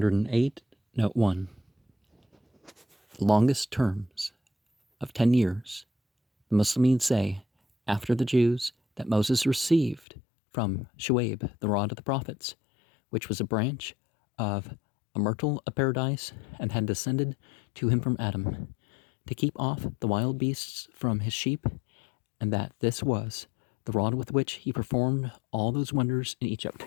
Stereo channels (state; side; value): drops out; right; at 10.1 s